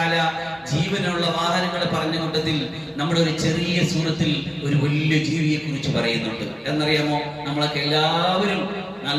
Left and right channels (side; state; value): both; identical; correlation 1.00